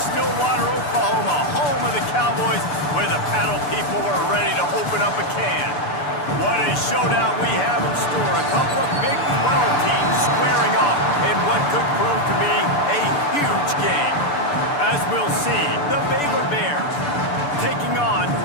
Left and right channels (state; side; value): late; right; 6.8 ms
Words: Oklahoma, home of the Cowboys, where the paddle people are ready to open up a can. What a showdown we have in store. A couple of Big 12 teams squaring off in what could prove to be a huge game. As we'll see, the Baylor Bears taking on